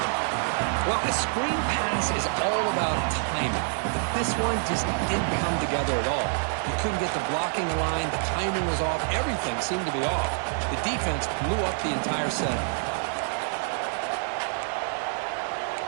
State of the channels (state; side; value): silent; left; 57 dB below the other